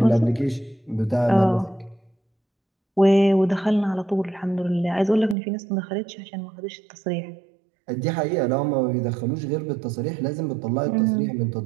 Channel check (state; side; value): drops out; left; at 5.4 s